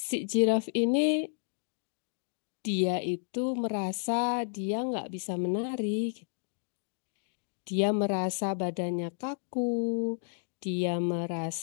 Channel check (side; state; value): right; silent; digital silence